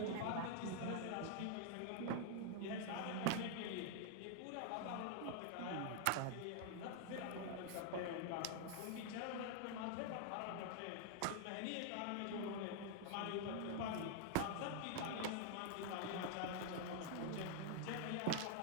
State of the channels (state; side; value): different; both; correlation 0.00